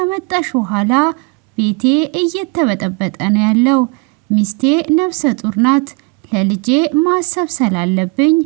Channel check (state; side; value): quieter; left; 29.6 dB